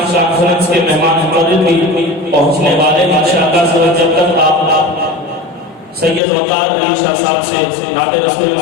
کانفرنس کے مہمان مقرر بھی پہنچنے والے ہیں۔ انشاءاللہ جب تک آپ سید وقار علی شاہ صاحب سے نعت رسول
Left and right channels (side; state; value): right; drops out; at 6.2 s